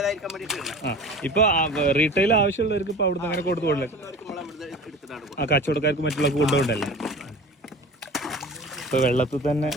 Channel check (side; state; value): both; normal; correlation 0.38